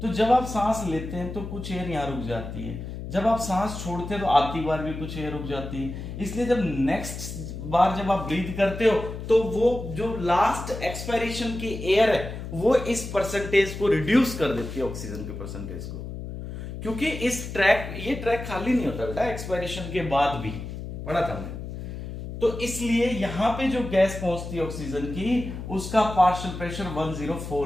तो जब आप सांस लेते हैं तो कुछ एयर यहां रुक जाती है, जब आप सांस छोड़ते हैं तो आती बार भी कुछ एयर रुक जाती है, इसलिए जब नेक्स्ट बार जब आप ब्रीथ करते हो तो वो जो लास्ट एक्सपायरेशन की एयर है वो इस परसेंटेज को रिड्यूस कर देती है, ऑक्सीजन के परसेंटेज को, क्योंकि ये ट्रैक खाली नहीं होता बेटा एक्सपायरेशन के बाद भी, पढ़ा था हमने। तो इसलिए यहां पे जो गैस पहुंचती है ऑक्सीजन की, उसका पार्शियल प्रेशर 104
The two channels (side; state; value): left; noise; hum, 8 dB below the sound